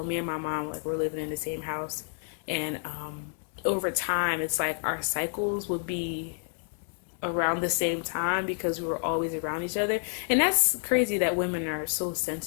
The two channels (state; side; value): silent; right; 58 dB below the other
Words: me and my mom, like we're living in the same house, and over time it's like our cycles would be around the same time because we were always around each other. And that's crazy that women are so